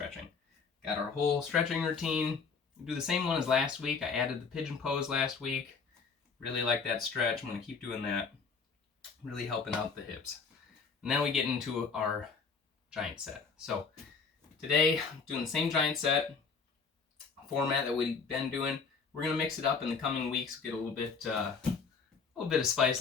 Got our whole stretching routine. We'll do the same one as last week. I added the pigeon pose last week. Really like that stretch. I'm going to keep doing that. Really helping out the hips. And then we get into our giant set. So today, I'm doing the same giant set format that we've been doing. We're going to mix it up in the coming weeks, get a little bit of spice,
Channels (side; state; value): right; quieter; 5.3 dB